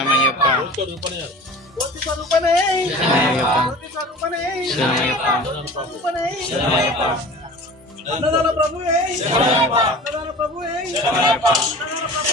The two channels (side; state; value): both; normal; correlation 0.40